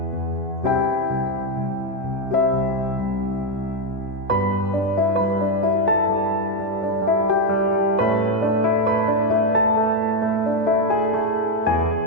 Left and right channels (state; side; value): normal; both; correlation 0.05